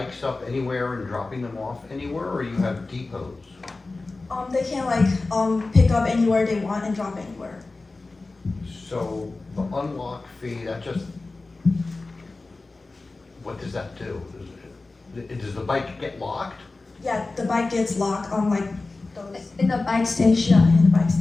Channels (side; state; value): right; quieter; 3.4 dB